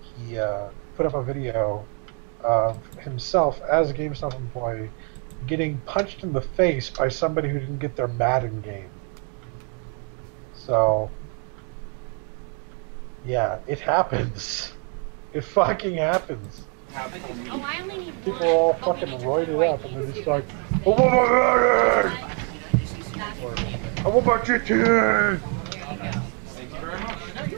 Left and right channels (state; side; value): quieter; left; 39.8 dB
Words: he put up a video of himself as a GameStop employee getting punched in the face by somebody who didn't get their Madden game. So, yeah, it happens. It fucking happens. Oh, I only need People are all fucking roided up, and they're just like, I want my Madden! Or, I want my GTA! Thank you very much. No,